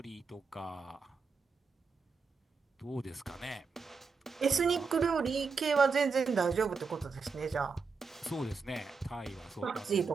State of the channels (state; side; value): quieter; left; 4.9 dB